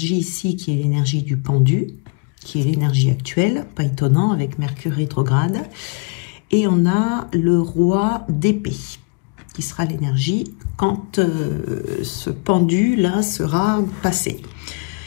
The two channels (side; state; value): right; quieter; 34.1 dB